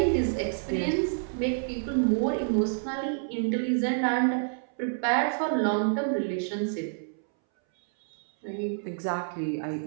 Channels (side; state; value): left; silent; 59 dB below the other